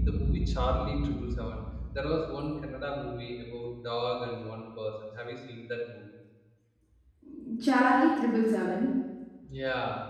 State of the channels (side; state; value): both; identical; correlation 1.00